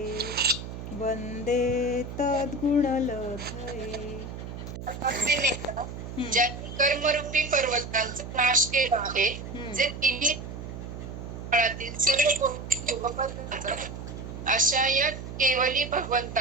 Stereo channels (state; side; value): noise; right; hum, 9 dB below the sound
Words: वन्दे तद्गुणलब्धये. ज्यांनी कर्मरूपी पर्वतांचा नाश केला आहे, जे तिन्ही काळातील सर्व गोष्टी अशा या केवली